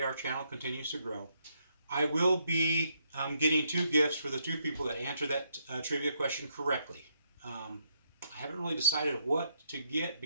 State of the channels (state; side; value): inverted; both; correlation -0.75